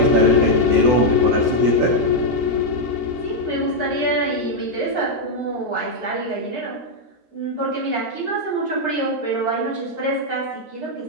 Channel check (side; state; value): left; late; 13 ms